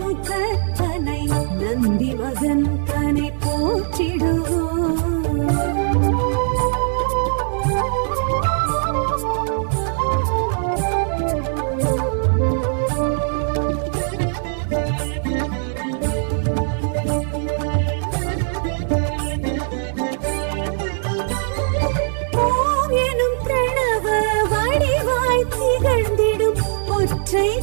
முகத்தனை நந்தி மகன் தனை போற்றிடுவோம்.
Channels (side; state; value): left; silent; 58 dB below the other